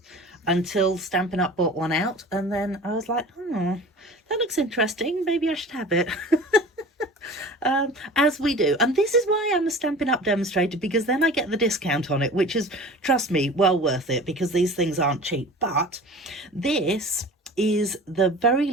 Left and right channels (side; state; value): both; normal; correlation 0.40